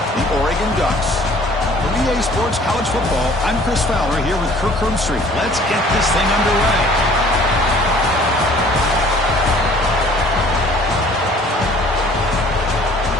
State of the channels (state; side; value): normal; both; correlation 0.53